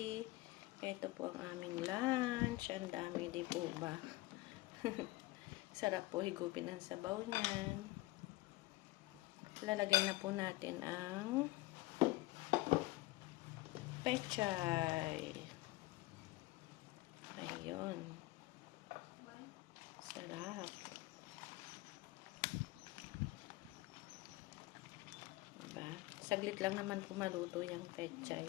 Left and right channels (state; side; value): quieter; right; 19.4 dB